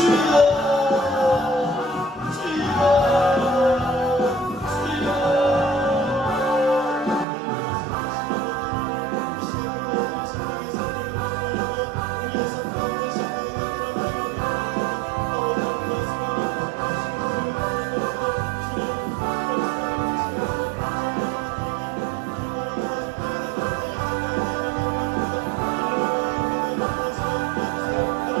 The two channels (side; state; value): left; drops out; at 7.2 s